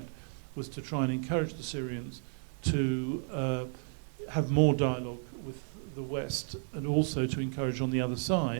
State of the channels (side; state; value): left; silent; 56 dB below the other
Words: was to try and encourage the Syrians to have more dialogue with the West, and also to encourage on the other